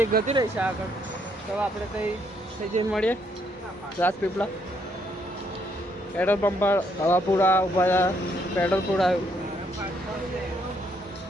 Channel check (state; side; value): normal; both; correlation 0.72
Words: ગતી રહી છે આગળ। તો આપણે થઈ જઈને મળીએ રાજપીપળા પેટ્રોલ પંપ પર। હવા પૂરા ઊભા પેટ્રોલ પૂરાયું।